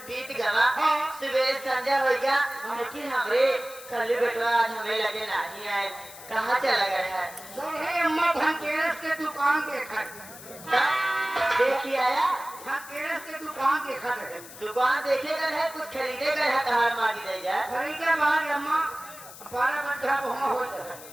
बीत गया सवेरे संध्या हो गया लेकिन हमरे कल बेटवा आज हमें लगे नहीं आए कहाँ चला गया है? अम्मा धनतेरस के दुकान देखा देखिए आया धनतेरस के दुकान देखा है दुकान देखेगा है कुछ खरीदे गए है कहाँ मांगी जाएगा खरीदे बाद अम्मा 12 घंटा घूमा हो जाए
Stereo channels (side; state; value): left; noise; hiss, 16 dB below the sound